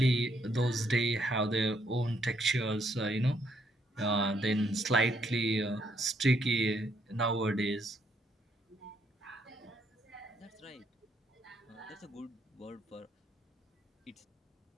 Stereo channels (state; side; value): normal; both; correlation 0.73